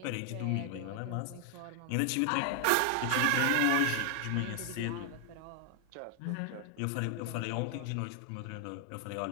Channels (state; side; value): different; both; correlation 0.00